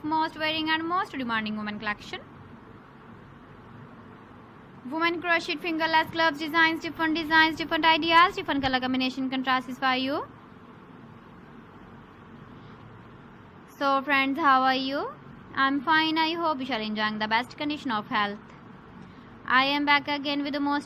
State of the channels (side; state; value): both; identical; correlation 1.00